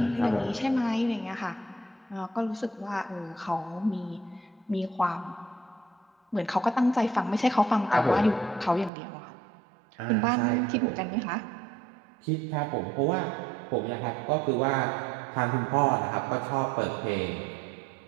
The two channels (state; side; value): drops out; left; at 8.9 s